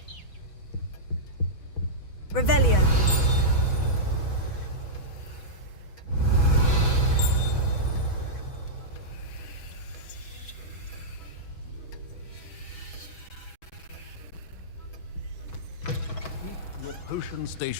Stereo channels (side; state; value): right; late; 6.2 ms